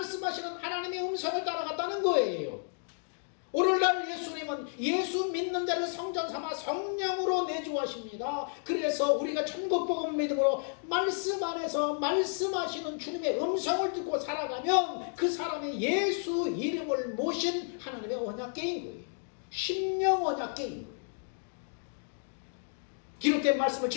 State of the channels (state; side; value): silent; right; 57 dB below the other